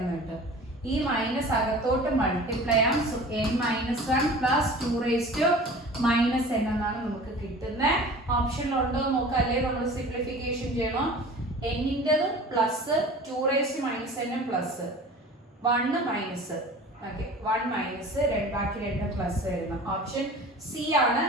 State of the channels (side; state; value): both; normal; correlation 0.41